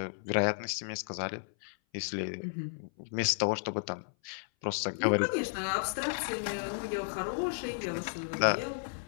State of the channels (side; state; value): right; silent; 56 dB below the other